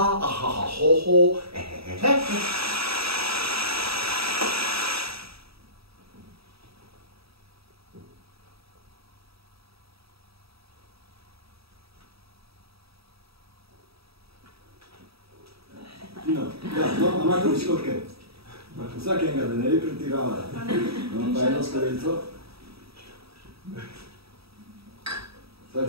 ahahahoho, No, imate piškotke. Vsak enega, da ne bi pretirala. No, pa eno skorelico.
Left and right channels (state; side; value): late; left; 0.77 ms